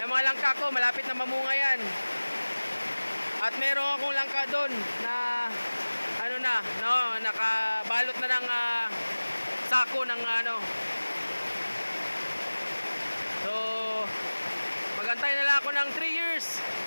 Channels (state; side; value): inverted; both; correlation -1.00